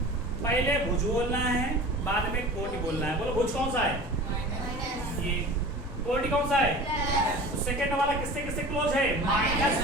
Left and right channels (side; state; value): both; normal; correlation 0.38